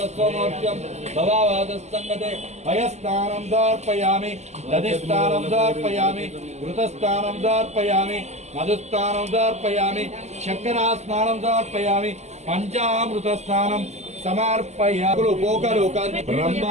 భవావాదస్సంగతే భయస్నానం సమర్పయామి దధిస్నానం సమర్పయామి ఘృతస్నానం సమర్పయామి మధుస్నానం సమర్పయామి చక్రాస్నానం సమర్పయామి పంచామృత స్నానం సమర్పయామి పోకలు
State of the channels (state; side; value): late; left; 0.33 ms